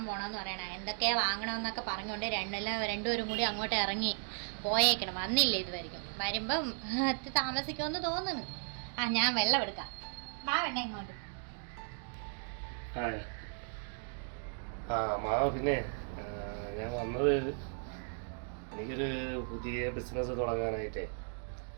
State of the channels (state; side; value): silent; left; 54 dB below the other